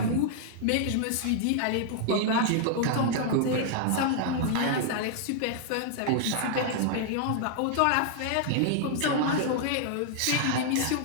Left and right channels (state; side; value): different; both; correlation -0.01